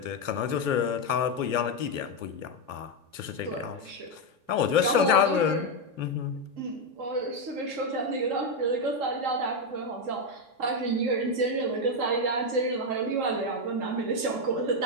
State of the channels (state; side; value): late; left; 3.1 ms